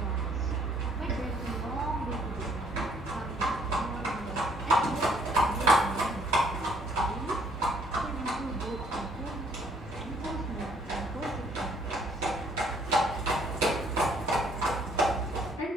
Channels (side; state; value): both; normal; correlation 0.63